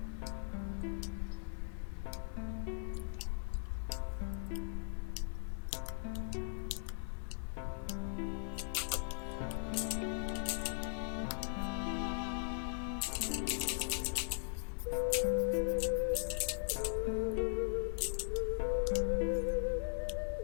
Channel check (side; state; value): right; silent; digital silence